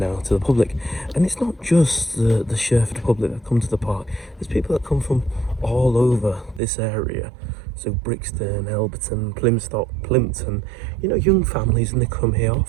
to the public. And it's not just the Sherford public that come to the park. There's people that come from all over this area, so Brixton, Elberton, Plymstock, Plimpton, you know, young families, and they come here.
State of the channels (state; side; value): drops out; left; at 6.6 s